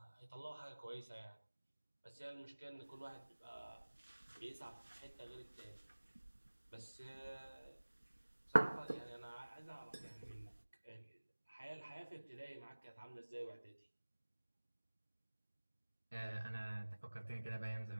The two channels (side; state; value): both; inverted; correlation -1.00